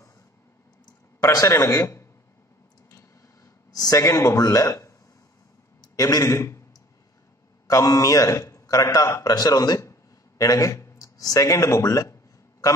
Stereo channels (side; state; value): both; normal; correlation 0.51